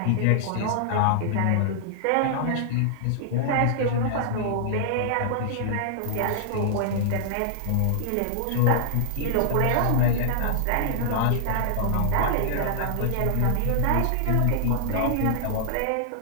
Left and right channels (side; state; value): both; different; correlation -0.01